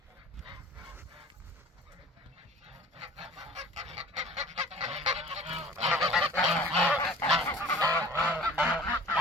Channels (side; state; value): both; normal; correlation 0.46